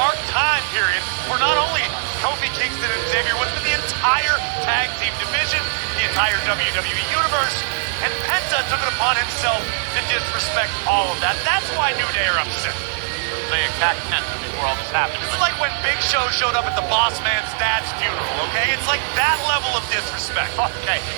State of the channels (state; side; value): silent; left; 65 dB below the other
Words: time period for not only Kofi Kingston and Xavier Woods, but the entire tag team division, the entire WWE universe, and Penta took it upon himself to disrespect all of that. That's why New Day are upset. They attacked Penta before all this happened. It's like when Big Show showed up at the boss man's dad's funeral, okay? It's like that level of disrespect. Okay,